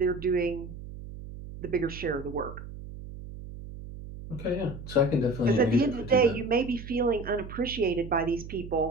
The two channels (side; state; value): right; noise; hum, 12 dB below the sound